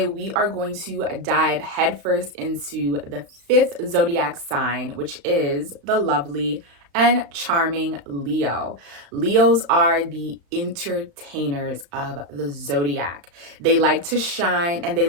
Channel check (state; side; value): late; left; 35 ms